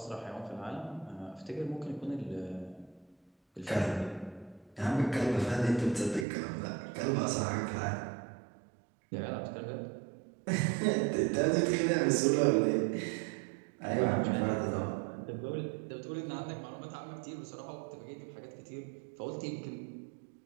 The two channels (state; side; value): drops out; left; at 6.2 s